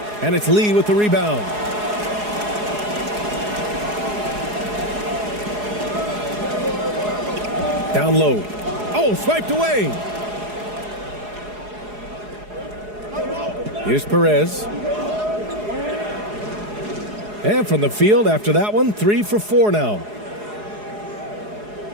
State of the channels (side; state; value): left; late; 4.8 ms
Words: And it's Lee with the rebound. Down low. Oh, swiped away. Here's Perez. And from the field after that one, 3 for 4 now.